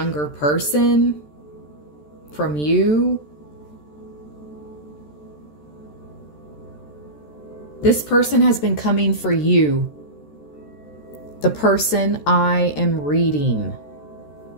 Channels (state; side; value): late; right; 13 ms